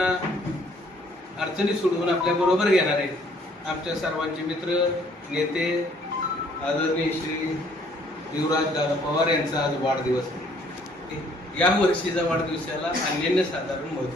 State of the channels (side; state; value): both; normal; correlation 0.62